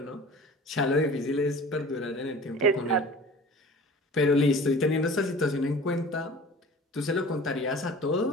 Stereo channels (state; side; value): normal; both; correlation 0.42